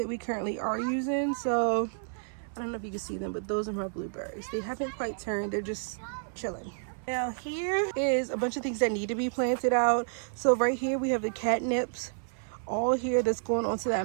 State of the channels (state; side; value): silent; left; 57 dB below the other